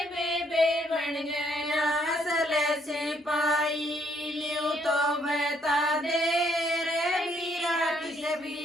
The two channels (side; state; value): both; normal; correlation 0.69